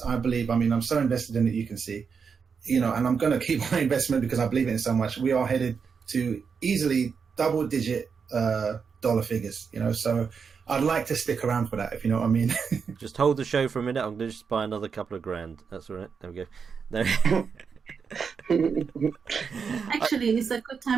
I believe, I mean, I'm so invested in it, you can see, you know, and I'm going to keep my investment because I believe in it so much. We are headed to easily double-digit dollar figures, you know, so I'd like to stick around for that, if you know what I mean. Just hold the show for a minute. I'm going to just buy another couple of grand. That's all right. There we go. There. Actually, it's a good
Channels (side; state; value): left; quieter; 6.0 dB